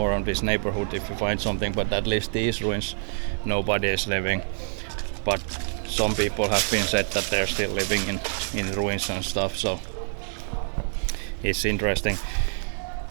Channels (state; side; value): silent; left; 56 dB below the other